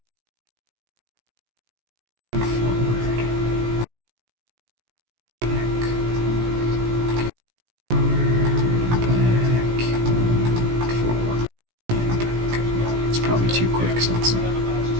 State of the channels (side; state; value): left; late; 17 ms